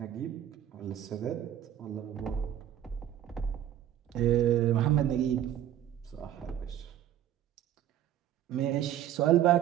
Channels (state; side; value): quieter; left; 11.2 dB